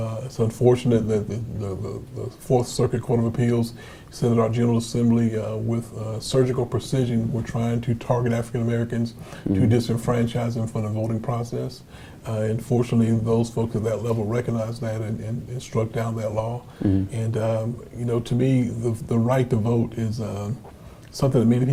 It's unfortunate that the Fourth Circuit Court of Appeals said that our General Assembly, with surgical precision, were trying to target African Americans to disenfranchise them from the voting process. And fortunately, those folks at that level recognized that and struck down that law. And to me, the right to vote is something that many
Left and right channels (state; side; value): identical; both; correlation 1.00